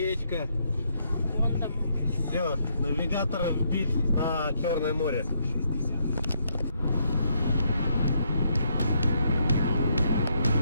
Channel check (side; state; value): both; inverted; correlation -0.75